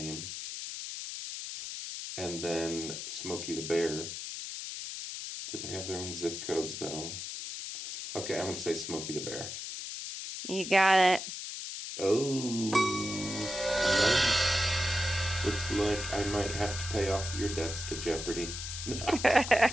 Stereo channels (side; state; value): left; noise; hiss, 7 dB below the sound